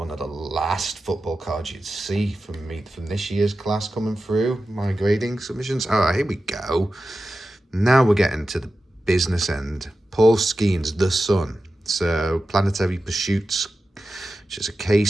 of the last football cards you'd see from me from this year's class coming through. My grading submissions. Oh, here we go. Now we're getting to the business end. Paul Skeens, The Sun. So, Planetary Pursuits, which is a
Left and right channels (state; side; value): normal; both; correlation 0.93